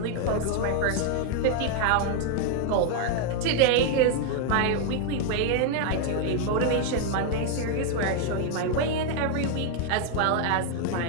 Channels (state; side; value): different; both; correlation 0.00